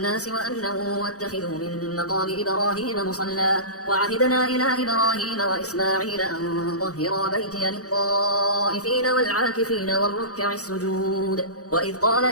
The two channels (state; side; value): late; right; 0.66 ms